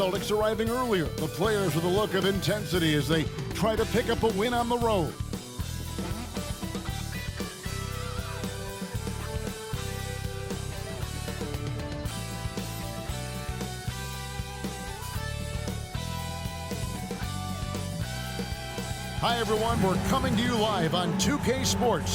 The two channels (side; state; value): both; identical; correlation 1.00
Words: arriving earlier. The players with a look of intensity as they try to pick up a win on the road. Hi everyone, we're coming to you live on 2K